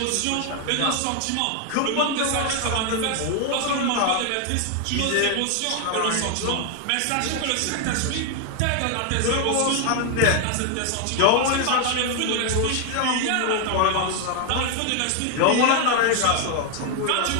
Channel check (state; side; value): different; both; correlation 0.01